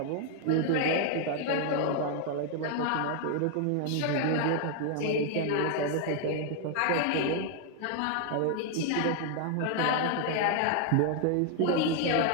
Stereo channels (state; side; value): different; both; correlation 0.00